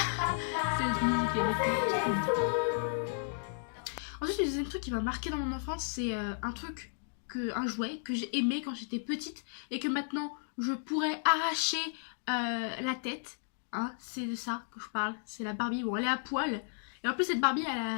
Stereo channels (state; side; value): silent; right; digital silence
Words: Cette musique, elle était trop bien. Ensuite, le deuxième truc qui m'a marqué dans mon enfance, c'est un jouet que j'ai aimé quand j'étais petite et que maintenant je pourrais arracher la tête. Hein, c'est de ça que je parle. C'est la Barbie. Bon, elle est à poil. Et en plus, cette Barbie, elle